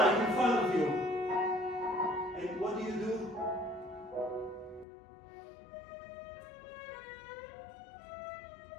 in front of you. And what do you do?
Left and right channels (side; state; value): right; drops out; at 4.9 s